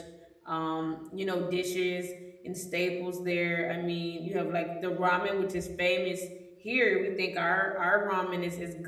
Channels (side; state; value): both; identical; correlation 1.00